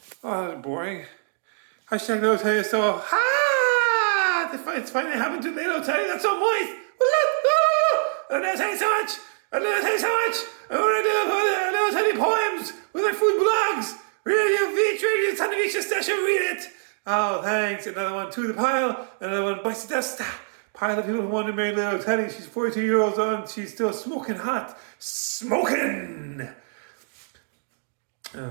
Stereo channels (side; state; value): left; silent; digital silence